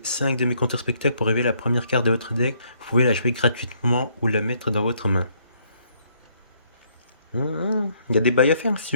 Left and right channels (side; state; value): both; inverted; correlation -0.69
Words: 5 de mes contre-spectacles pour révéler la première carte de votre deck. Vous pouvez la jouer gratuitement ou la mettre dans votre main. Il y a des bails à faire si